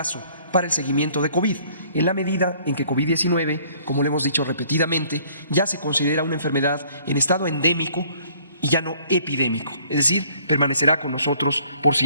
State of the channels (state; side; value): inverted; both; correlation -0.59